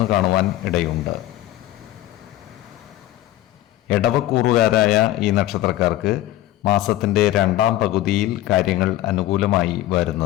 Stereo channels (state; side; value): quieter; right; 14.7 dB